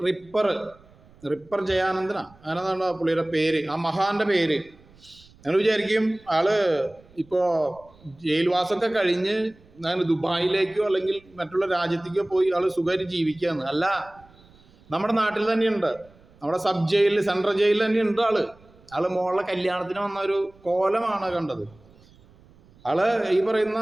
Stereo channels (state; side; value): noise; right; rumble, 27 dB below the sound